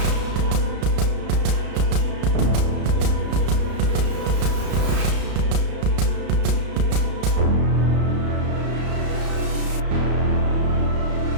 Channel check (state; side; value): late; left; 33 ms